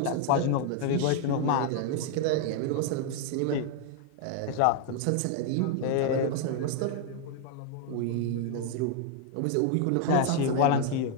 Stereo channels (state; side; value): different; both; correlation 0.00